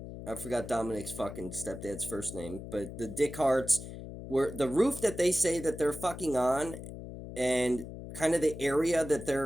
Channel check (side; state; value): left; noise; hum, 11 dB below the sound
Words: forgot Dominic's fucking stepdad's first name, but the Dick Harts were the roof that they say that they're fucking on, and kind of the area that